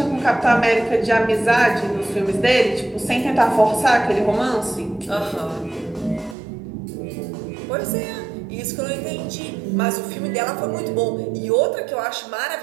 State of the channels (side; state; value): left; drops out; at 6.4 s